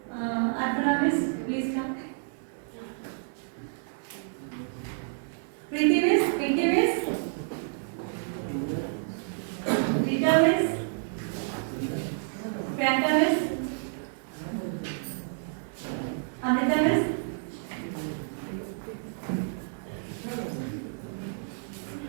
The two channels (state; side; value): silent; left; 58 dB below the other